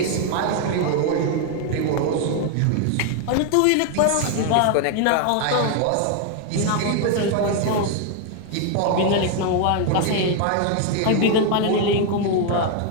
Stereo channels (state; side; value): different; both; correlation 0.00